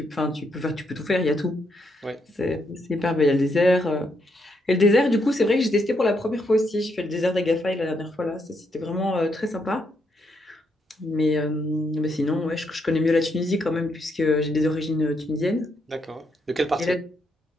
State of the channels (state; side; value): normal; both; correlation 0.77